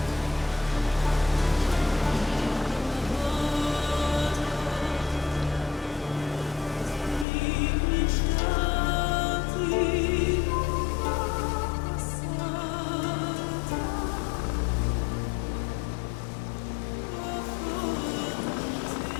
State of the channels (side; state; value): right; drops out; at 7.2 s